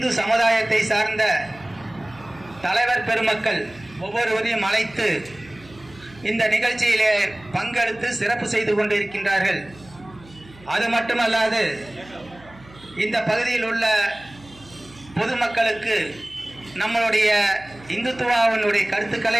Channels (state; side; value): noise; right; hum, 23 dB below the sound